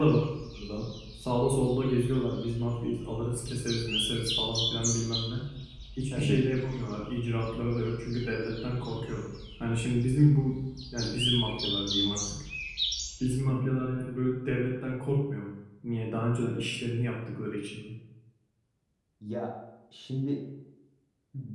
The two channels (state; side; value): identical; both; correlation 1.00